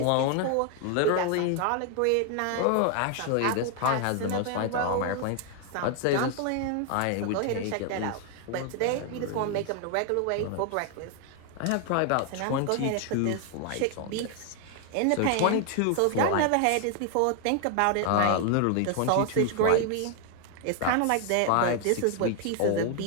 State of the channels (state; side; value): different; both; correlation 0.00